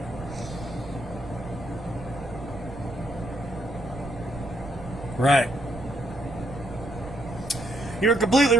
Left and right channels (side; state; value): right; noise; rumble, 13 dB below the sound